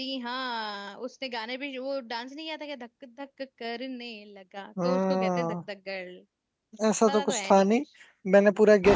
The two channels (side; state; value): both; identical; correlation 1.00